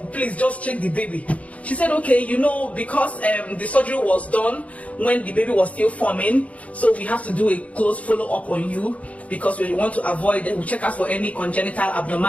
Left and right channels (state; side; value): late; right; 0.067 ms